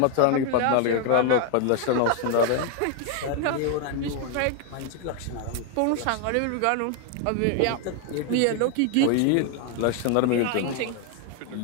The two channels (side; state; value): both; different; correlation 0.01